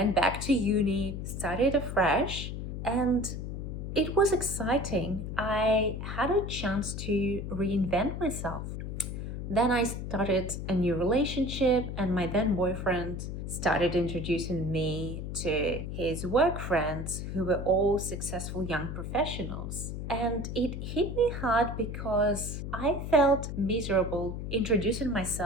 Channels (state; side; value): noise; left; hum, 6 dB below the sound